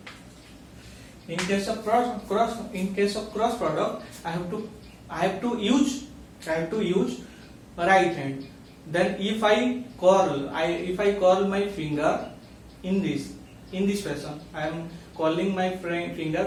have to use right hand. Then if I curl my finger in this fashion, I am curling my finger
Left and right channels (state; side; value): identical; both; correlation 1.00